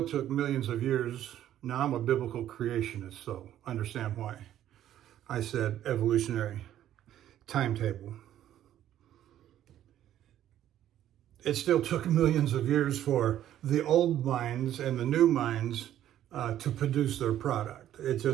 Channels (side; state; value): left; quieter; 11.8 dB